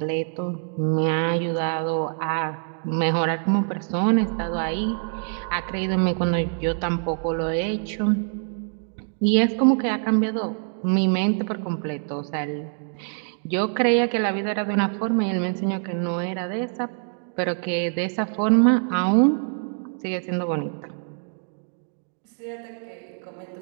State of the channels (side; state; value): left; silent; 62 dB below the other